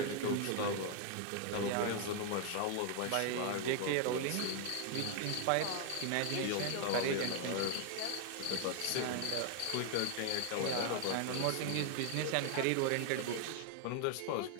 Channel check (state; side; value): different; both; correlation 0.00